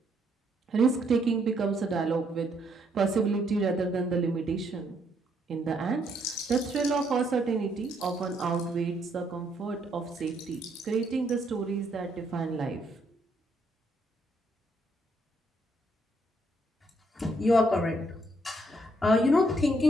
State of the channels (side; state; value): both; normal; correlation 0.72